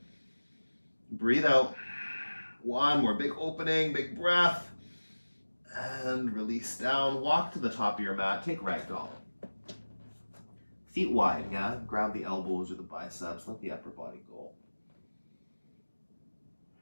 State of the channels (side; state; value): both; inverted; correlation -1.00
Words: Breathe out. One more big opening, big breath. And release down. Walk to the top of your mat. Take ragdoll. Feet wide, yeah? Grab the elbows or the biceps. Let the upper body go.